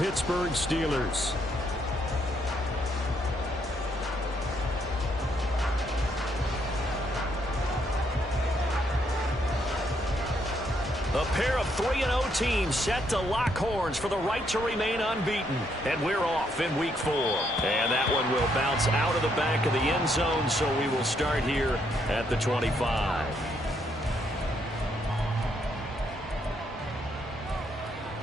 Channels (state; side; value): normal; both; correlation 0.74